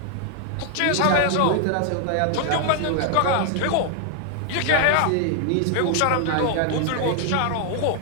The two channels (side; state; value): both; different; correlation 0.00